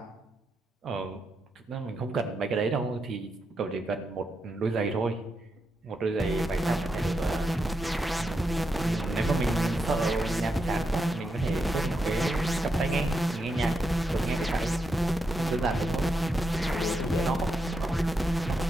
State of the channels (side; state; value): both; normal; correlation 0.84